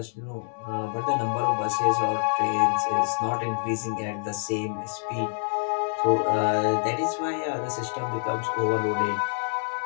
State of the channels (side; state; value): right; silent; digital silence